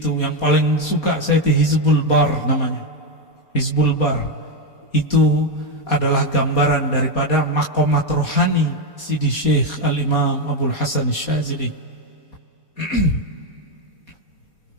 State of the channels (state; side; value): late; right; 4.2 ms